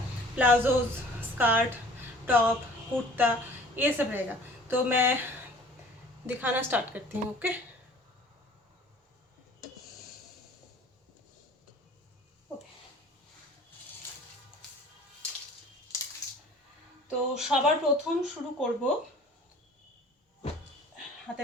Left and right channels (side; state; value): both; normal; correlation 0.49